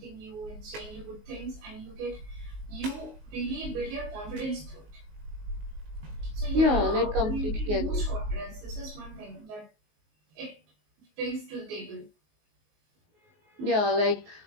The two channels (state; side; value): late; left; 19 ms